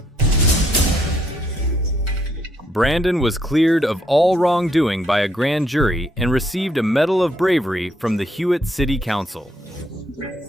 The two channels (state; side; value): normal; both; correlation 0.72